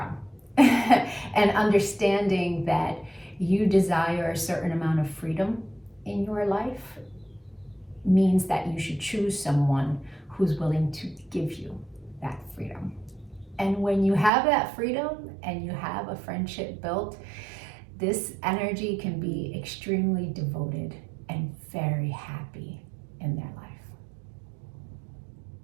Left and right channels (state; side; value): drops out; left; at 14.3 s